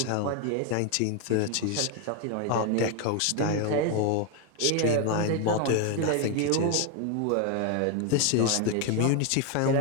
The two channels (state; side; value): different; both; correlation 0.01